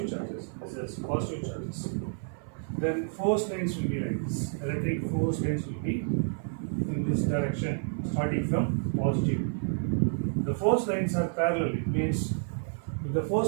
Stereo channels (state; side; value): silent; left; 58 dB below the other